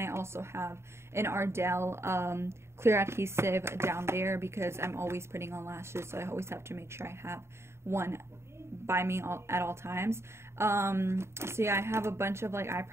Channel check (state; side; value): late; left; 0.13 ms